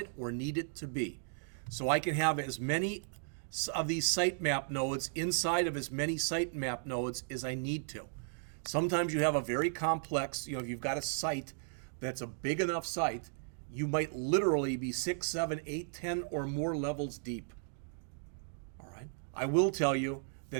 or need it to be. So I can have as many of these sitemap nodes inside of as many sitemap nodes as I need to. Sometimes you have a very complex, if you've got a site that's a big enough site, you might literally be 6, 7, 8, 10 or more levels deep. All right. I will tell you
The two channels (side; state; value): left; silent; digital silence